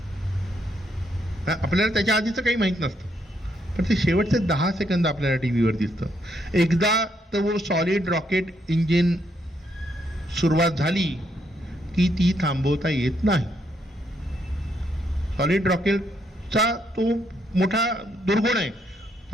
आपल्याला त्याच्या आधीचं काही माहीत नसतं, पण ते शेवटचे 10 सेकंद आपल्याला टी व्हीवर दिसतं. एकदा तो सॉलिड रॉकेट इंजिन सुरुवात झाली की ती थांबवता येत नाही. सॉलिड रॉकेटचा तो मोठा दुर्गुण आहे.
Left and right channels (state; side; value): normal; both; correlation 0.75